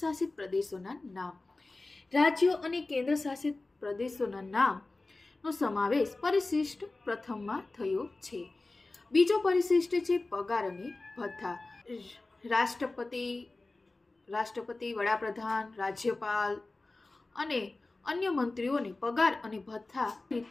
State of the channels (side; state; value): right; quieter; 3.2 dB